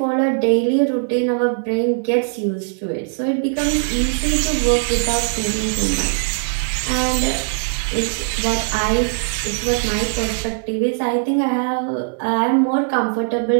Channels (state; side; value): silent; left; 62 dB below the other